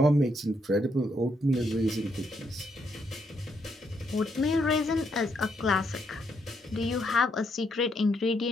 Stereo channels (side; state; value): both; normal; correlation 0.76